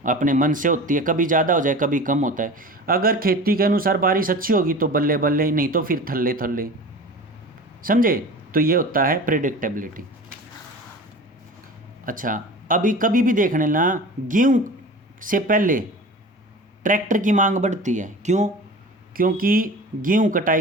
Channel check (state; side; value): normal; both; correlation 0.36